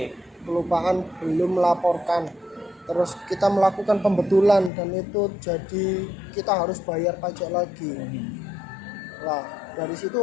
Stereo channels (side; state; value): right; drops out; at 4.7 s